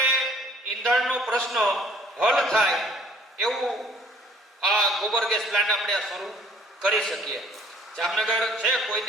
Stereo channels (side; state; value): both; normal; correlation 0.55